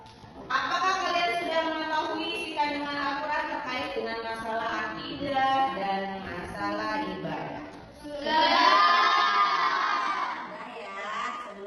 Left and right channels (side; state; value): both; identical; correlation 1.00